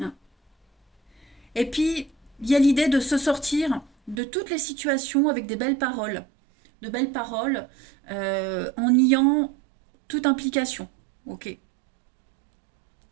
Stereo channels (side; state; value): left; drops out; at 4.2 s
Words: hein. Et puis, il y a l'idée de se sortir de toutes les situations avec des belles paroles. De belles paroles en niant toute implication. Ok.